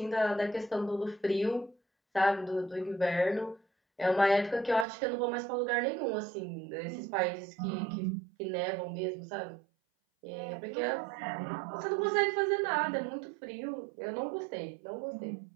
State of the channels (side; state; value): left; drops out; at 4.9 s